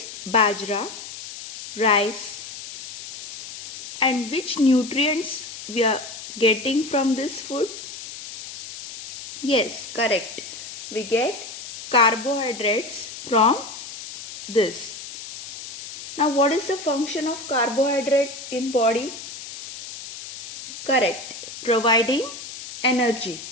bajra, rice. And which nutrients we are getting from this food? Yes, correct. We get carbohydrates from this. Now what is the function of carbohydrate in body? Correct, providing energy.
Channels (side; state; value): left; noise; hiss, 12 dB below the sound